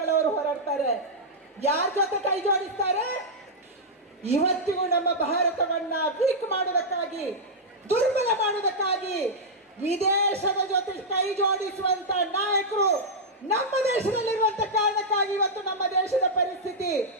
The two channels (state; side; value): normal; both; correlation -0.07